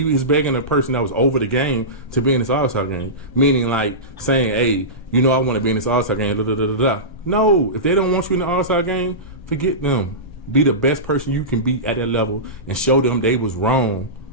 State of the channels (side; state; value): both; normal; correlation -0.19